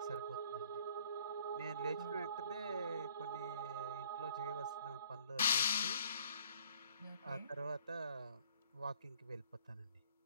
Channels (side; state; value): both; inverted; correlation -0.57